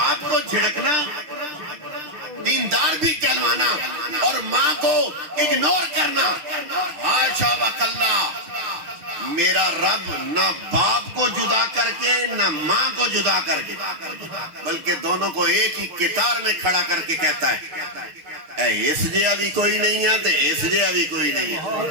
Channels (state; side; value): late; left; 6.7 ms